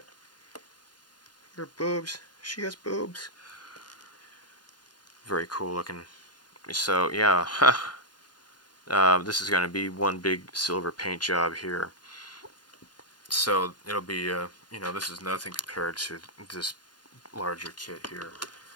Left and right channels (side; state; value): right; late; 0.70 ms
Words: Her boobs. She has boobs. Very cool looking. So yeah, this is going to be one big silver paint job here. So it'll be, you know, this is nothing compared to this larger kit here.